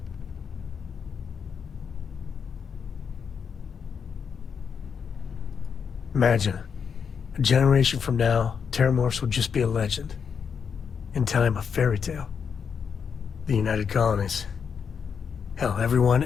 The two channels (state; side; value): quieter; right; 6.7 dB